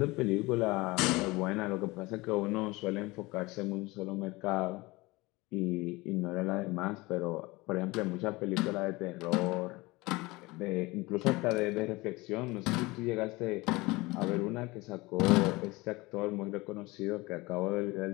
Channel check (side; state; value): right; quieter; 22.3 dB